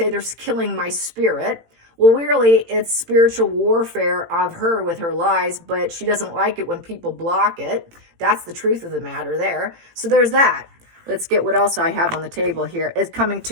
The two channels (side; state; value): left; late; 18 ms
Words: they're killing my spirit. Well, really, it's spiritual warfare of her with her lies, but she doesn't like it when people block it. That's the truth of the matter there. So there's that. Let's get what else I have on the table here. It's coming